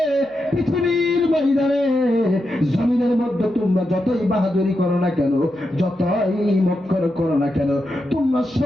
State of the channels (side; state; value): right; noise; hum, 30 dB below the sound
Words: পৃথিবীর ময়দানে জমিনের মধ্যে তোমরা যতই বাহাদুরি করো না কেন, যতই মক্কর করো না কেন, তোমরা